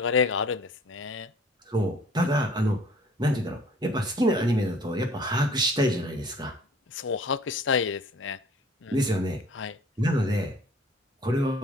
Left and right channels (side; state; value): both; normal; correlation 0.51